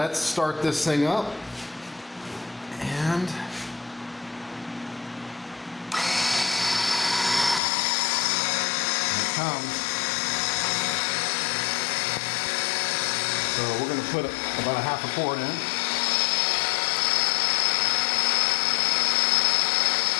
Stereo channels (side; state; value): right; drops out; at 7.6 s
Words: start this thing up, and here it comes. So we're going to put about a half a quart in.